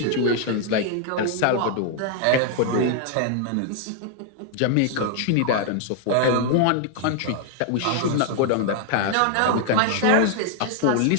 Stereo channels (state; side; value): different; both; correlation 0.00